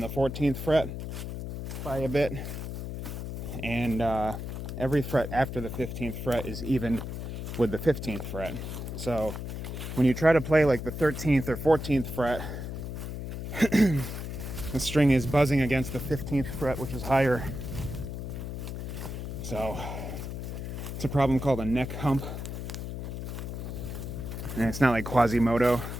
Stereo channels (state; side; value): noise; left; hum, 6 dB below the sound